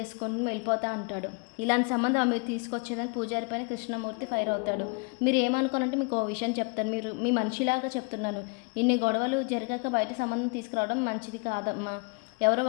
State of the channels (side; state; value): right; quieter; 32.8 dB